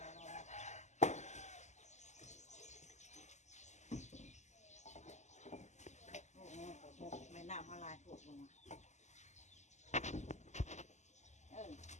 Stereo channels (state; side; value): late; right; 0.34 ms